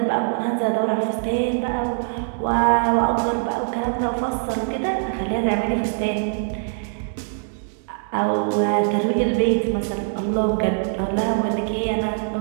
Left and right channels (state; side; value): silent; left; digital silence